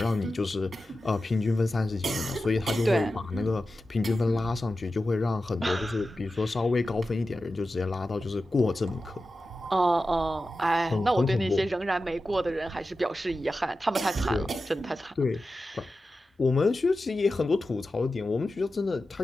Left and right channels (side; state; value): both; normal; correlation 0.93